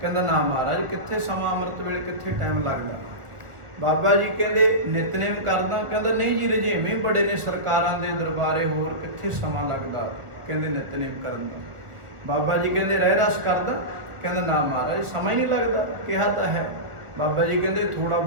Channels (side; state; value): left; late; 1.4 ms